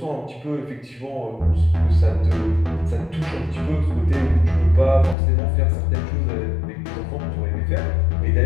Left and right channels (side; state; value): right; drops out; at 5.2 s